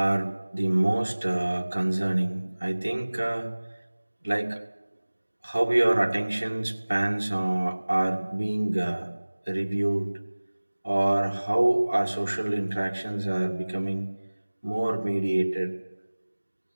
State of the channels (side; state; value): both; inverted; correlation -1.00